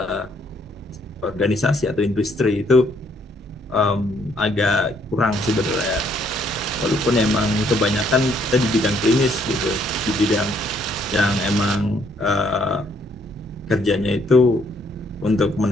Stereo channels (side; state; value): both; normal; correlation 0.68